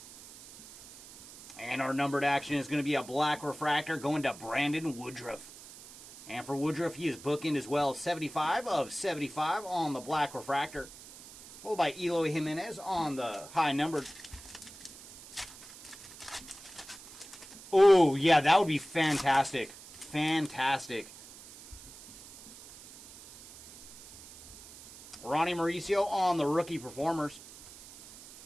And our numbered action is going to be a black refractor going to Brandon Woodruff. And for Woodruff, he is bookend as well. 75 of 75 on the black refractor. Followed by Eloy Jimenez on the high numbered. Oh, yeah, that would be fantastic. Fantastic. Ronnie Mauricio on the rookie performers.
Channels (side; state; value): right; noise; hiss, 18 dB below the sound